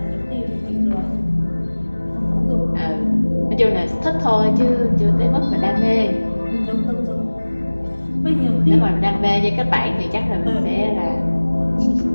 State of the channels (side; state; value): both; inverted; correlation -1.00